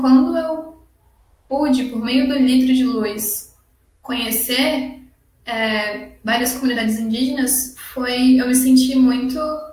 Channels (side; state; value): both; identical; correlation 1.00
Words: eu pude, por meio do Litro de Luz, conhecer várias comunidades indígenas, eu me senti muito